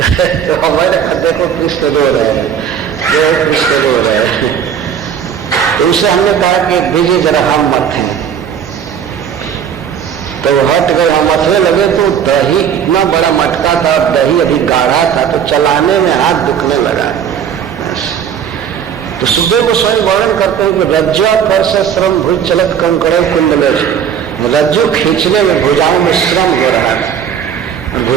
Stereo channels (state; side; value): quieter; left; 8.2 dB